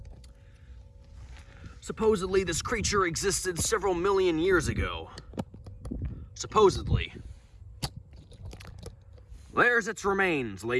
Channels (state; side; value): identical; both; correlation 1.00